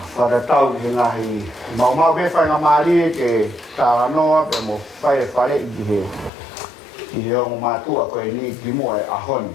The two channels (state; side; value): drops out; right; at 6.3 s